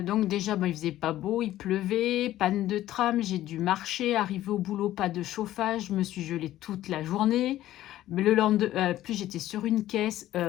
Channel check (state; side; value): quieter; right; 14.0 dB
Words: déjà, il faisait pas beau, il pleuvait, panne de tram, j'ai dû marcher, arriver au boulot, pas de chauffage, je me suis gelée toute la journée. Mais le lendemain, plus j'étais sur une caisse.